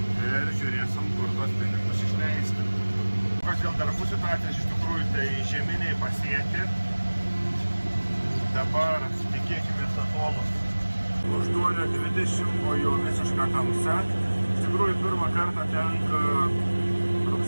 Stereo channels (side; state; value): both; inverted; correlation -1.00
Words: ir žiūrėsim, kur tos pinigus išleisti. Kas dėl darbų situacijos, iš tikrųjų, tai žieminiai pasėti. Dabar tikėkime atolus. 8:20, o jau visiška tamsa. Iš tikrųjų, pirmą kartą tenka